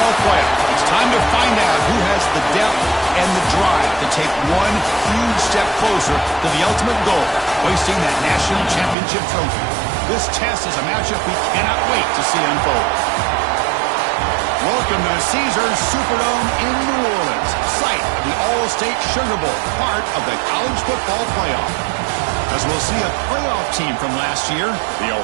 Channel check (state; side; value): drops out; left; at 9.0 s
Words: playoff. It's time to find out who has the depth and the drive to take one huge step closer to the ultimate goal, hoisting that national championship trophy. This test is a matchup we cannot wait to see unfold. Welcome to Caesars Superdome in New Orleans, site of the All-State Sugar Bowl, part of the college football playoff. As we'll see a playoff team from last year, the